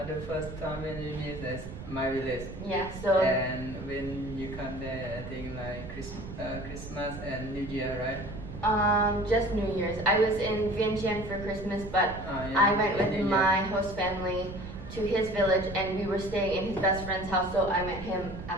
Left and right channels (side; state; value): right; noise; rumble, 11 dB below the sound